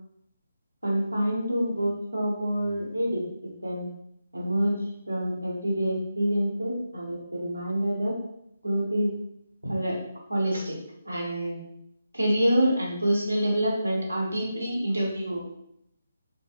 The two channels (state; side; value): inverted; both; correlation -0.90